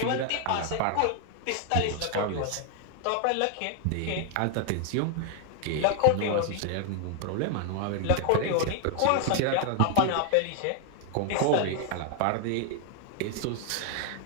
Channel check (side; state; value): both; different; correlation 0.00